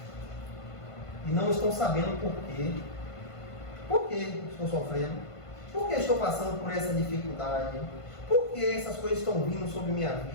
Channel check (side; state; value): right; late; 1.5 ms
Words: E não estão sabendo por quê. Por que estou sofrendo? Por que estou passando por essa dificuldade? Por que essas coisas estão vindo sobre minha